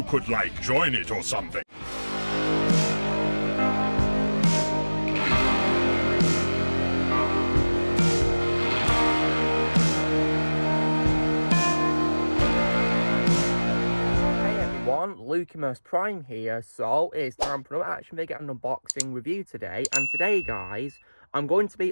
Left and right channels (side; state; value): both; inverted; correlation -1.00